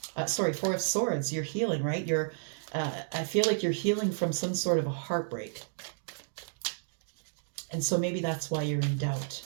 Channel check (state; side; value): silent; left; digital silence